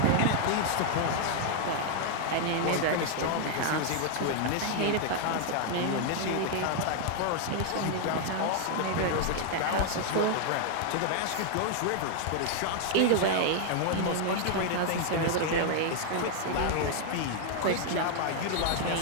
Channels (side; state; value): both; different; correlation 0.00